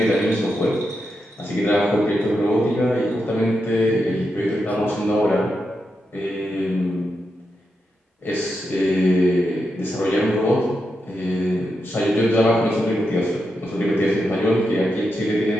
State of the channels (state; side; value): normal; both; correlation 0.86